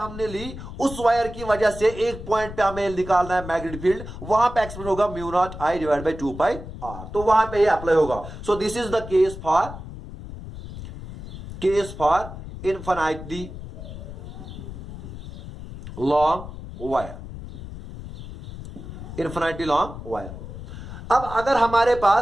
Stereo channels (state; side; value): noise; left; rumble, 11 dB below the sound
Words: ली, उस वायर की वजह से एक पॉइंट पे हमें निकालना है मैग्नेटिक फील्ड, वहां पे एक्सप्रेस होगा mu not I divide by 2 pi R. तो वहां पे ये अप्लाई होगा। So this is the case for infinitely long wire, infinitely long wire. अब अगर